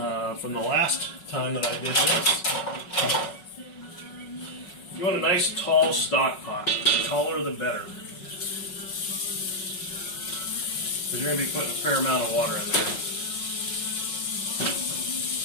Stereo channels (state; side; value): late; right; 5.4 ms